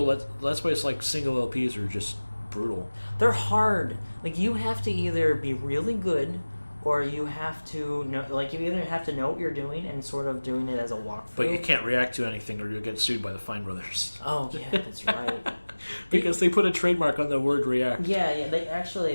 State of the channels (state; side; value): inverted; both; correlation -1.00